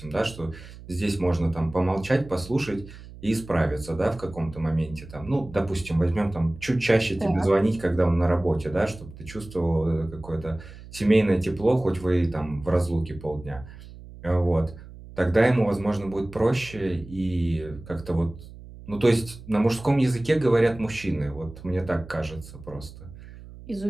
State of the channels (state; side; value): noise; right; hum, 17 dB below the sound